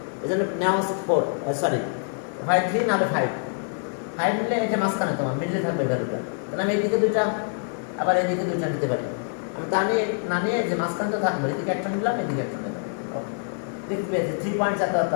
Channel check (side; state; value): right; silent; 61 dB below the other